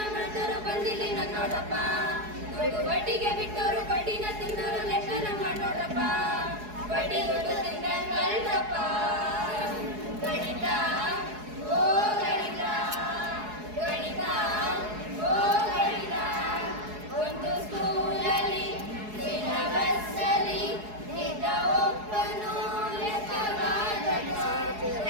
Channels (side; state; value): left; late; 4.7 ms